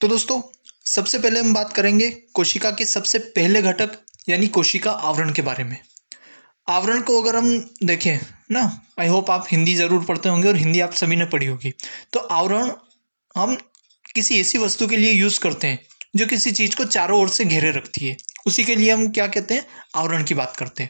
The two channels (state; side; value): inverted; both; correlation -1.00